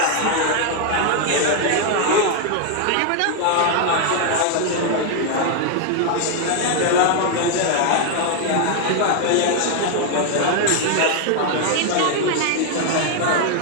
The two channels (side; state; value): both; different; correlation 0.00